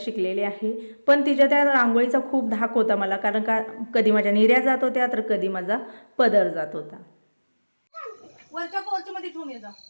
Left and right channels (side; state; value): both; inverted; correlation -1.00